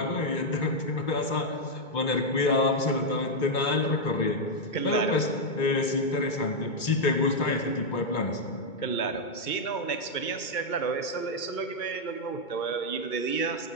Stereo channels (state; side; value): late; right; 2.2 ms